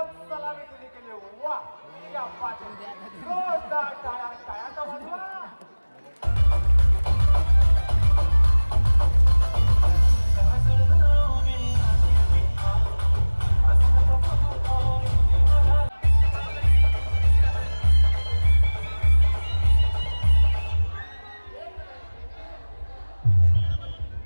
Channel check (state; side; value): inverted; both; correlation -1.00